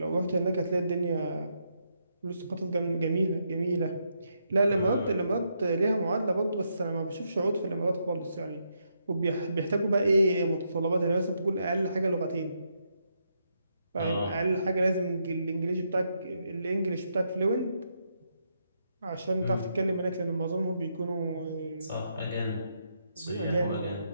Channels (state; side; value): inverted; both; correlation -0.79